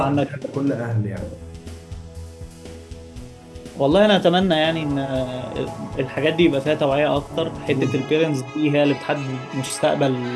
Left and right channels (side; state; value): both; identical; correlation 1.00